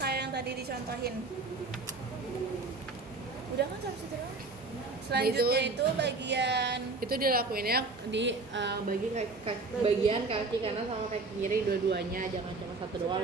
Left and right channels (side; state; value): left; quieter; 3.7 dB